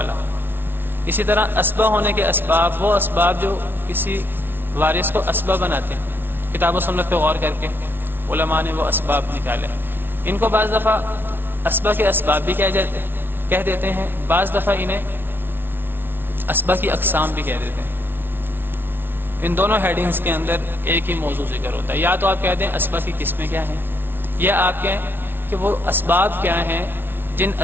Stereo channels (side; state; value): left; late; 0.10 ms